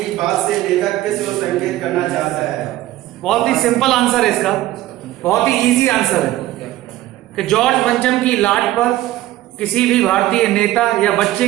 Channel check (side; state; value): left; quieter; 15.3 dB